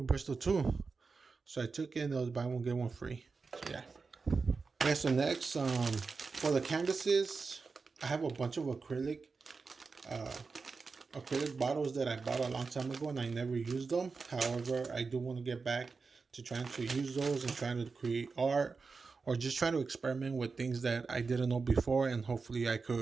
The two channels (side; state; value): left; quieter; 4.6 dB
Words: Bristol too." So I took it and it was buy one get one free. So yeah. Okay, so next, for the canvases, I have a bunch of acrylic bottles that I bought a long time ago and I never used them. However, I do want to get back to trying to use those and trying to create art or just try to experiment with things that I didn't know before, and hopefully I